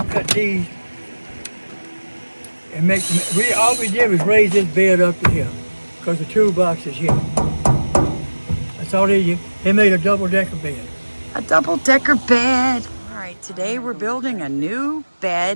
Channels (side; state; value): both; inverted; correlation -1.00